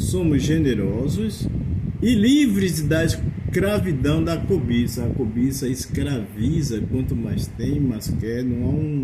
generosos e livres das escravidão da cobiça. A cobiça escraviza, quanto mais tem, mais quer, não há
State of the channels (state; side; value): identical; both; correlation 1.00